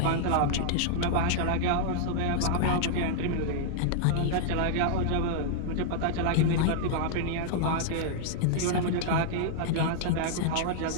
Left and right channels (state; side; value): different; both; correlation -0.01